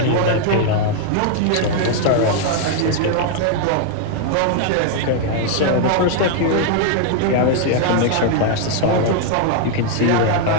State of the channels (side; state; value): both; different; correlation 0.00